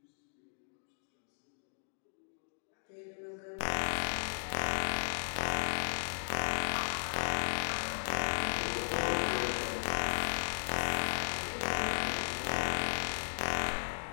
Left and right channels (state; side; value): silent; right; digital silence